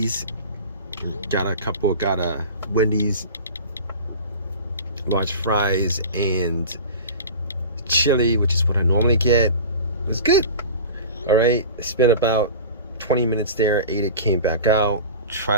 got a Wendy's large fries and chili, which is what I normally get. It was good. All right, I spent about 20 minutes there, ate it, came back out,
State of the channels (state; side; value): inverted; both; correlation -0.35